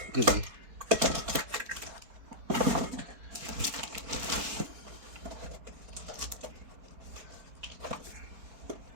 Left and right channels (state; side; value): late; left; 4.6 ms